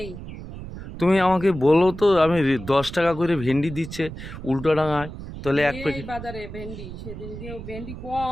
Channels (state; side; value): noise; right; rumble, 11 dB below the sound